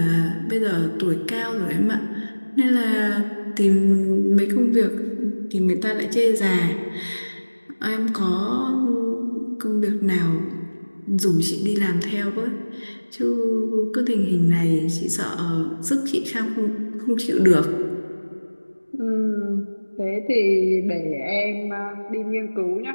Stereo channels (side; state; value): both; inverted; correlation -1.00